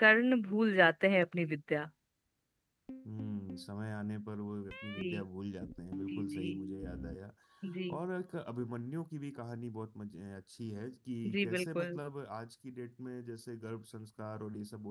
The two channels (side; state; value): both; identical; correlation 1.00